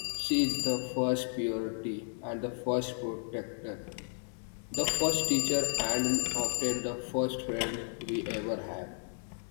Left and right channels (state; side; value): silent; right; 56 dB below the other